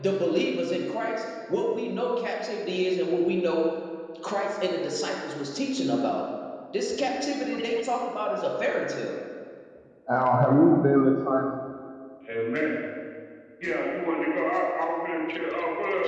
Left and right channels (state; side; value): identical; both; correlation 1.00